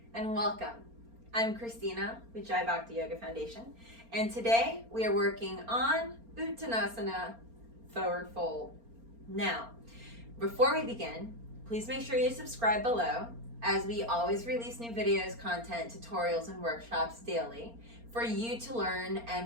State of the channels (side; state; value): left; late; 4.3 ms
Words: and welcome. I'm Christina with Jai Bhakti Yoga Foundation, and today we are working on Uttanasana, forward fold. Now, before we begin, please make sure you subscribe below, as we always release new videos, content, tutorials, and workshops daily for you to learn